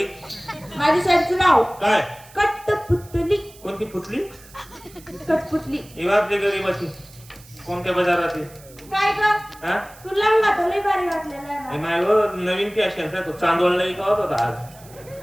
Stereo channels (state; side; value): noise; right; hiss, 23 dB below the sound